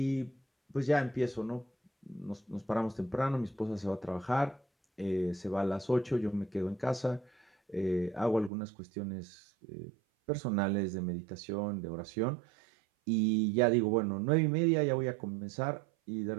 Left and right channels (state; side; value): drops out; left; at 8.5 s